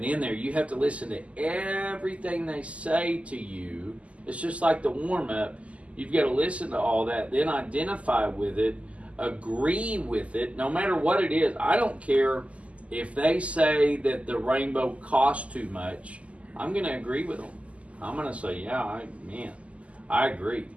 in there. You have to listen to everything they say to you. It's just like the warm-up. You've got to listen to all that, then identify with it, agree with it, no matter what it is. I don't care if they say that the rainbow costs too much. I'm going to agree with them. I'm going to say, yeah, I agree.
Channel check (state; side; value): late; left; 0.065 ms